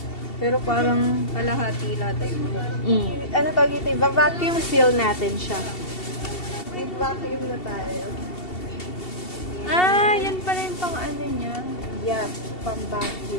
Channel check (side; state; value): right; late; 2.7 ms